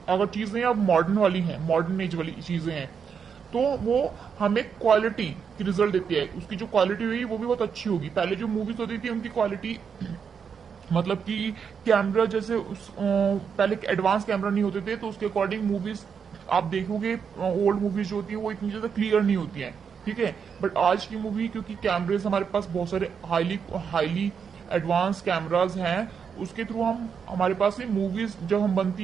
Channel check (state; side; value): quieter; left; 6.7 dB